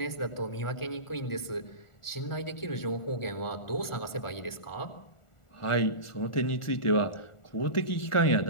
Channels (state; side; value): late; right; 1.4 ms